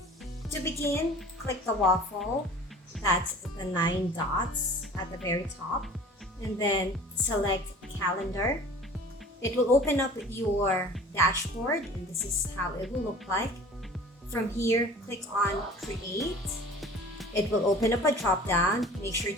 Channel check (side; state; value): both; normal; correlation 0.44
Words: To begin, click the waffle, that's the 9 dots at the very top, and then select Calendar. It will open up your dashboard and this is how it will look like. From here, click on Create. It will open up a drop-down. Make sure